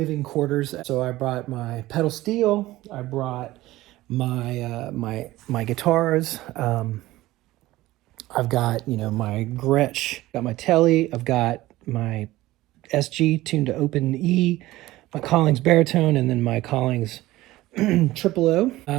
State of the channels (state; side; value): quieter; left; 17.3 dB